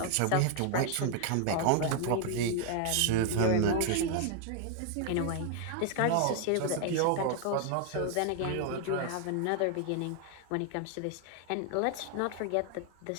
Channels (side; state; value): both; different; correlation 0.00